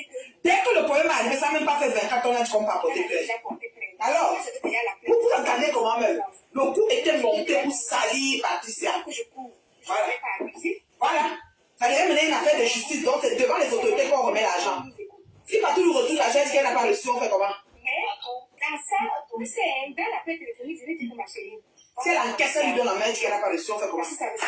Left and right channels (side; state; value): both; identical; correlation 1.00